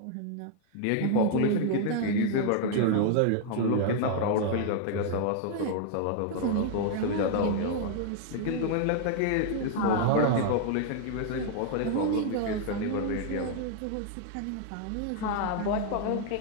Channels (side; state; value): both; different; correlation 0.00